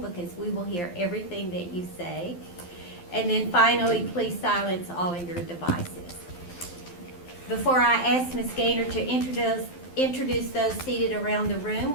because we will hear everything that you say. And then finally, please silence all of your devices. Before I ask Ms. Gaynor to introduce those seated around the room,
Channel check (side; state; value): right; late; 12 ms